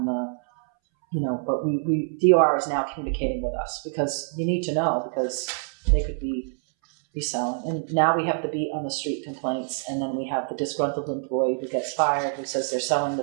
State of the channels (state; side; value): silent; left; 61 dB below the other